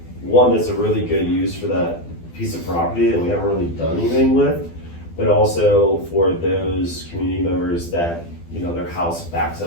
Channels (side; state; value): right; late; 12 ms